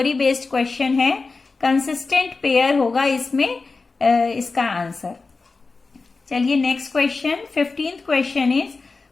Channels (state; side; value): quieter; right; 4.0 dB